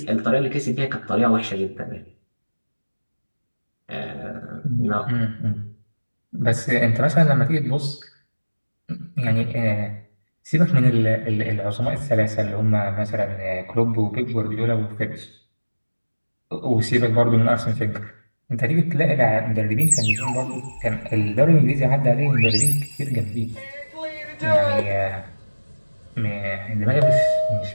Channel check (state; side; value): inverted; both; correlation -1.00